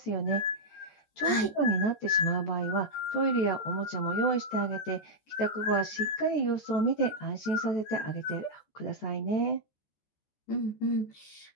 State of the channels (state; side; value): late; right; 14 ms